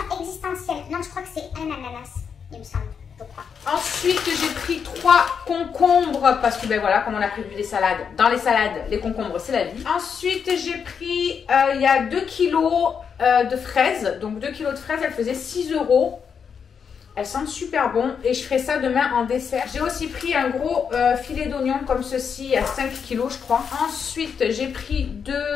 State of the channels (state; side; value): quieter; right; 6.7 dB